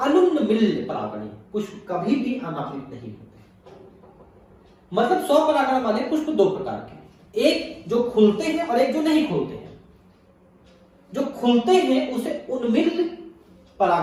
अनुन्मिल परागणी पुष्प कभी भी अनावृत नहीं होते। मतलब स्वपरागण वाले पुष्प दो प्रकार के, एक जो खुलते हैं और एक जो नहीं खुलते हैं। जो खुलते हैं उसे उन्मिल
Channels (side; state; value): both; identical; correlation 1.00